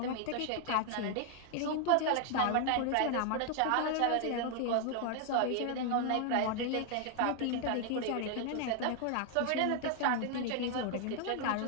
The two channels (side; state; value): both; different; correlation 0.00